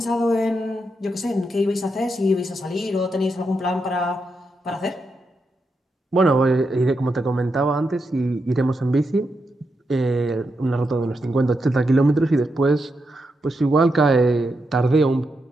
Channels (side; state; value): both; normal; correlation 0.84